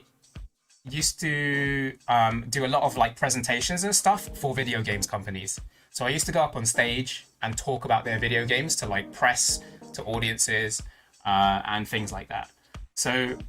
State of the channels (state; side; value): identical; both; correlation 1.00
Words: used to do a lot of like presentations and stuff for video games companies. So I used to go up on stage and talk about their video games to like press, to audiences, and things like that. So